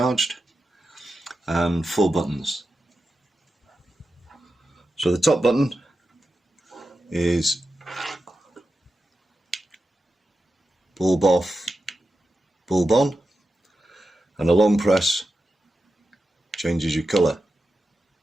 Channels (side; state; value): both; normal; correlation 0.91